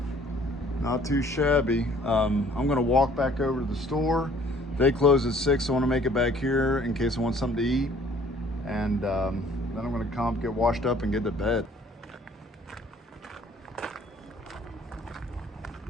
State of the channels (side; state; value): both; normal; correlation 0.56